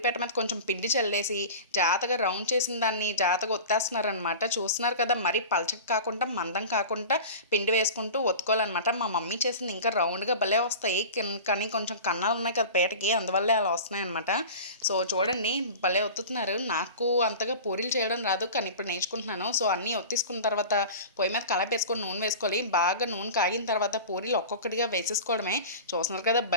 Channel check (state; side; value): inverted; both; correlation -0.34